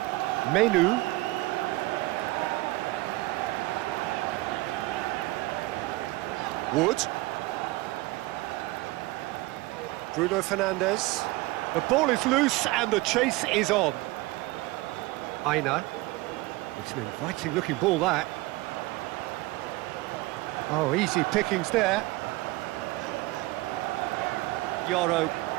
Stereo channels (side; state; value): left; quieter; 20.7 dB